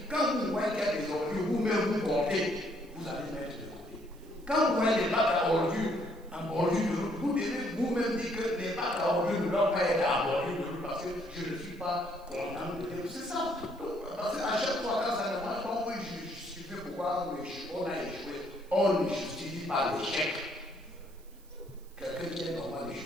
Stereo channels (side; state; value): right; noise; hiss, 28 dB below the sound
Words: Quand vous voyez qu'il y a des ordures, vous-même vous portez, vous allez mettre de côté. Quand vous voyez des bacs à ordures en bordure de route, vous devez vous-même dire que les bacs à ordures ne doivent pas être en bordure de route parce que je ne suis pas content de dire. C'est ça. Parce qu'à chaque fois, quand ça ne marche pas, on peut justifier pourquoi on a échoué. On ne justifie pas l'échec. Quelqu'un qui est normal ne